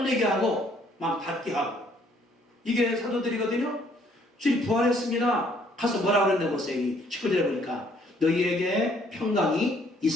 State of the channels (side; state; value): both; normal; correlation 0.64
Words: 하고 막 받게 하고 이게 사도들이거든요. 주님 부활했습니다. 가서 뭐라고 그랬나 보세요. 19절에 보니까 너희에게 평강이